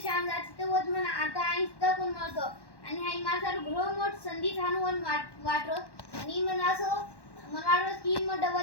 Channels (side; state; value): right; late; 1.1 ms